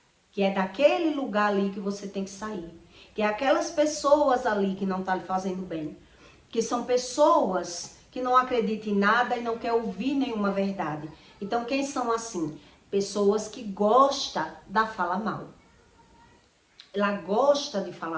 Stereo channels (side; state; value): both; identical; correlation 1.00